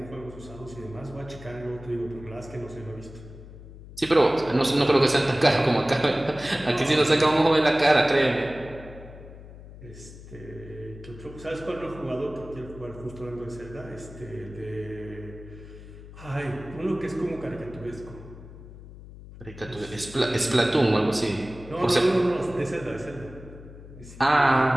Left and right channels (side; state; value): left; noise; hum, 16 dB below the sound